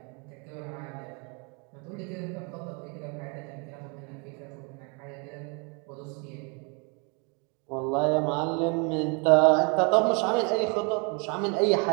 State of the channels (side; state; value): left; quieter; 34.1 dB